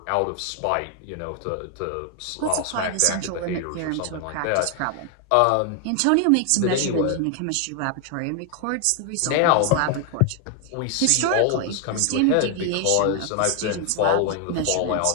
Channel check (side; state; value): both; different; correlation 0.00